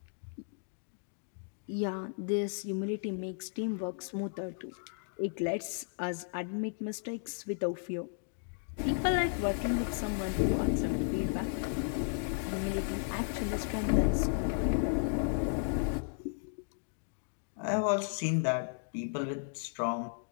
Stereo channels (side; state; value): right; silent; digital silence